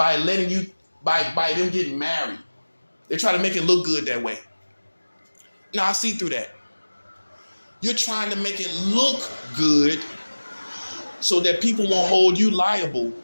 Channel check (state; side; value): inverted; both; correlation -1.00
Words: letting you, by them getting married. They try to make it look good that way. Now I see through that. You're trying to make it look good so that people won't hold you liable